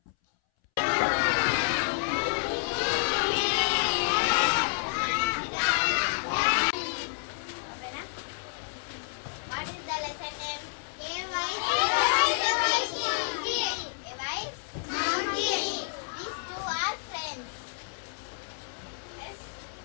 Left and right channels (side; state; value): right; silent; 58 dB below the other